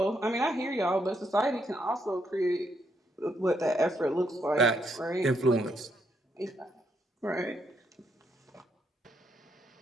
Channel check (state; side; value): normal; both; correlation 0.76